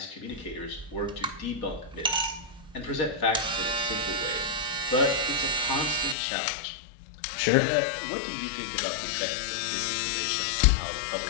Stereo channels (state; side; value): drops out; right; at 6.2 s